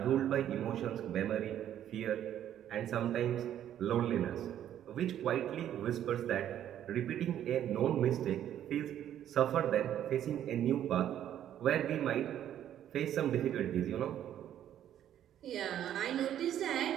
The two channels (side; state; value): left; quieter; 10.9 dB